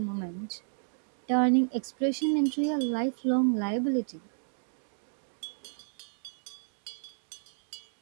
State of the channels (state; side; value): silent; left; digital silence